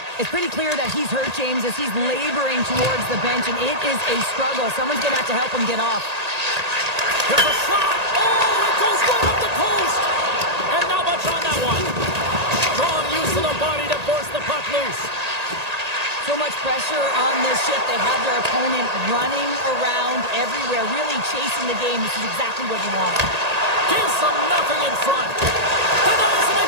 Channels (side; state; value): left; late; 1.8 ms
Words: It's pretty clear that he's hurt, James, as he's laboring towards the bench, and it is a struggle. Someone's going to have to help him get off. There's a shot! Oh, it goes right up the post! And not much on that one. Strong use of the body to force the puck loose. So much pressure on this shift. They have their opponent running around everywhere, really chasing the game. This is exactly what you want. Gives them nothing in front. Denies him